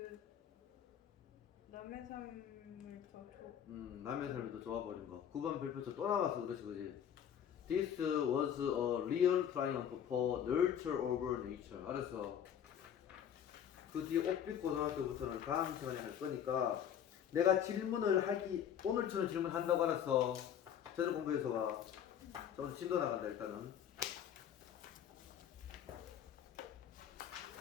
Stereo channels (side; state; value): right; quieter; 9.1 dB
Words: 남의 삶을 더 남의 삶이 더 좋아버린 거. 9번 별표 쳐. 또 나왔어 그렇지 그지? This was a real triumph for nurture over nature. 알았어. 그 뒤에 옥빛 고등학교부터는 다음 시간에 할 거니까 내가 질문을 하기 오늘처럼 질문한다고 알았어. 제대로 공부해서 와. 자, 오늘 진도 나간다 일단은.